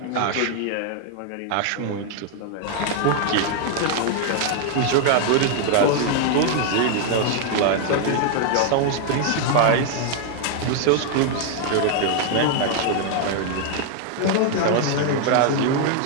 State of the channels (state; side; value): different; both; correlation 0.00